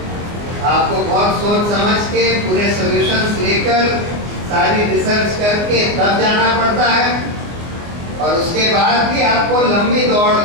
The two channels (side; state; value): left; late; 24 ms